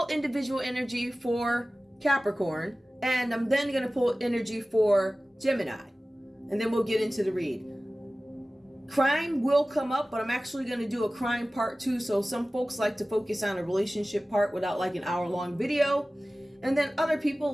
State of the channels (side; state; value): both; normal; correlation 0.97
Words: individual energy for Capricorn, and I'm then going to pull energy for Gemini, and then we'll get into the read. Crime will come up, but I'm actually going to do a crime part 2. So some folks like to focus on a relationship part without like an hour-long video. And then other people